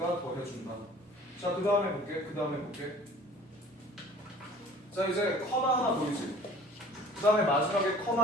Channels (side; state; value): both; normal; correlation 0.48